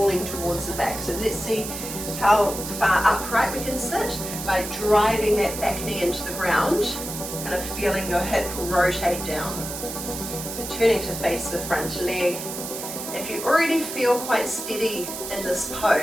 towards the back. So let's see how far upright we can sit by driving that back knee into the ground, kind of feeling your hip rotate down. So turning to face the front leg. If you already feel quite steady in this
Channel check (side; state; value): right; noise; hiss, 7 dB below the sound